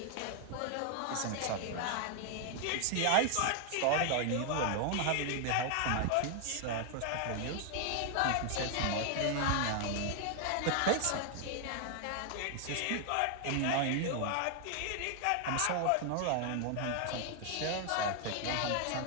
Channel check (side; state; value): both; different; correlation 0.00